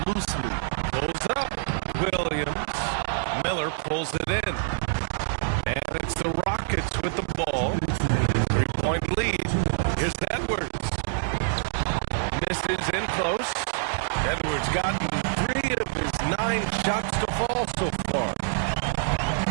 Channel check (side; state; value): left; silent; digital silence